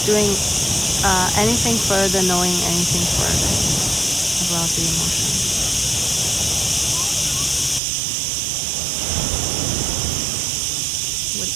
doing anything further, knowing anything further about the emotion? What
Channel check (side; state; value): left; drops out; at 7.8 s